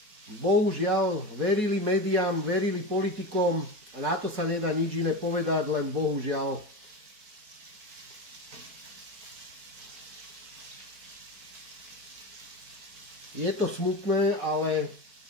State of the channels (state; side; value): late; left; 4.7 ms